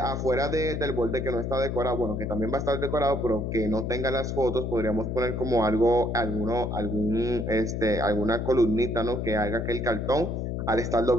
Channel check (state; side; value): noise; left; hum, 2 dB below the sound